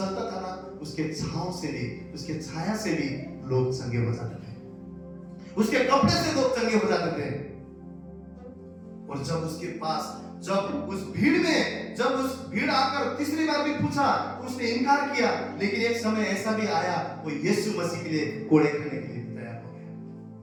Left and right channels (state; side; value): identical; both; correlation 1.00